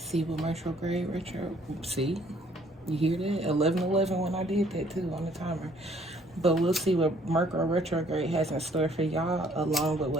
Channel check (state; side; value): normal; both; correlation 0.62